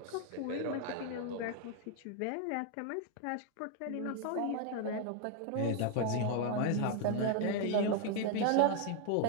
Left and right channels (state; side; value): different; both; correlation 0.00